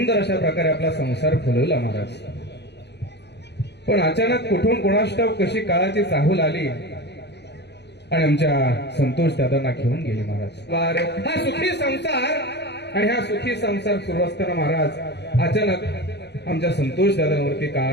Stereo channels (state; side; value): late; right; 0.50 ms